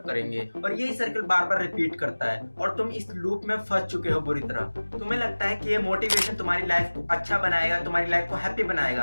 करेंगे, और यही सर्कल बार बार रिपीट करता है और तुम इस लूप में फंस चुके हो बुरी तरह। तुम्हें लगता है कि ये मोटिवेशन तुम्हारी लाइफ को अच्छा बनाएगा, तुम्हारी लाइफ को हैप्पी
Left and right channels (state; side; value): inverted; both; correlation -1.00